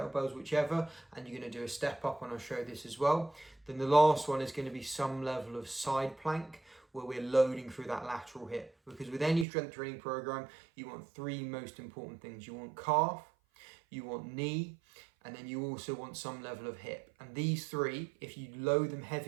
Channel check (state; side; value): drops out; left; at 9.5 s